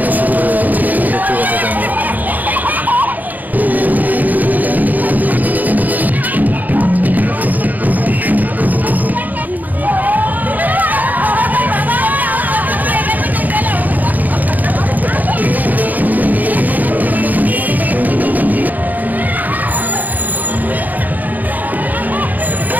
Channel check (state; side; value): late; left; 0.083 ms